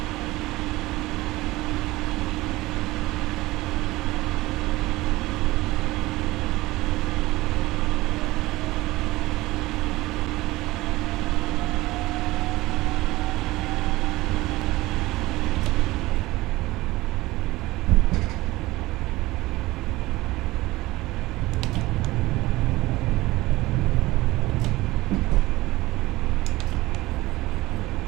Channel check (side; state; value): left; quieter; 19.1 dB